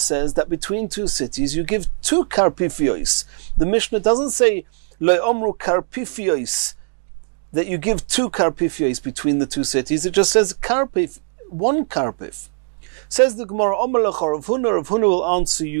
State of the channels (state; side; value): silent; left; digital silence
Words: that between two cities you give two karpifios. The Mishnah doesn't say lo omru karpifios, that you give two karpifios between the two cities. It just says karpef, one karpef. Says the Gemara, Omalach Rav Huna will answer